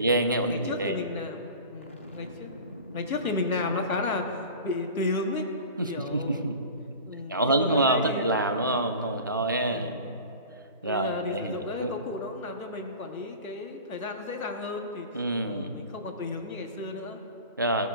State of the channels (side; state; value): both; inverted; correlation -0.37